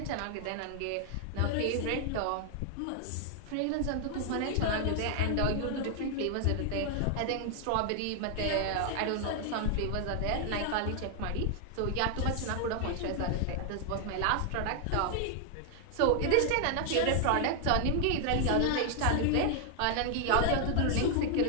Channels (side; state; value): both; different; correlation 0.00